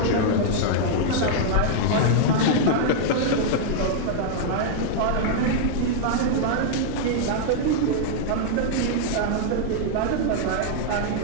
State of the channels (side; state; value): both; different; correlation -0.01